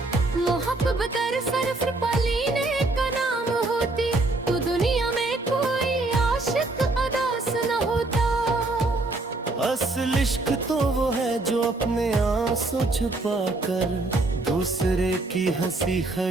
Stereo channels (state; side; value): quieter; left; 3.0 dB